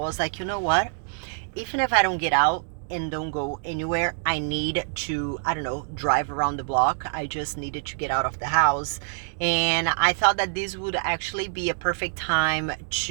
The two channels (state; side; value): silent; left; digital silence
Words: like, you know what? Even if I don't get out and don't go anywhere, I need to, I don't know, drive around the block. I just needed to get out of the house, and I thought that this would actually be a perfect time